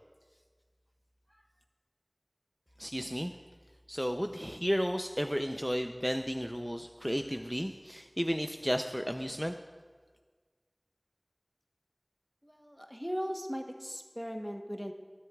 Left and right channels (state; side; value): identical; both; correlation 1.00